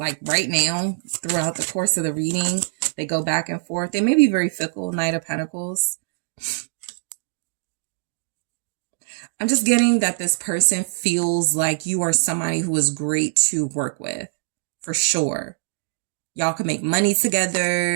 right now throughout the course of the reading. They go back and forth. They may be very fickle. Knight of Pentacles. I'm just getting that this person feels like you are somebody who is great to work with, for sure. Y'all can make money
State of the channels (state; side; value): silent; left; digital silence